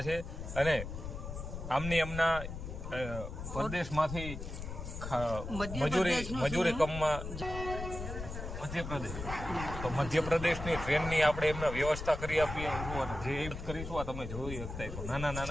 છે અને એમના પ્રદેશમાંથી મજૂરી કામમાં મધ્યપ્રદેશ, તો મધ્યપ્રદેશની ટ્રેનની આપણે એમને વ્યવસ્થા કરી આપીએ જે કરીશું. આ તમે જોઈ શકતા છો નાના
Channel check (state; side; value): noise; left; rumble, 7 dB below the sound